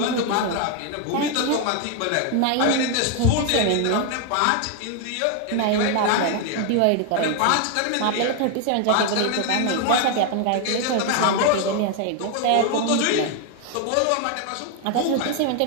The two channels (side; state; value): both; different; correlation 0.01